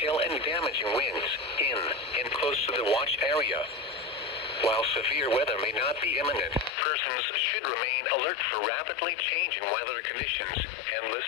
and damaging winds in and close to the watch area. While severe weather may not be imminent, persons should remain alert for rapidly changing weather conditions and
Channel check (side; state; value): right; drops out; at 6.8 s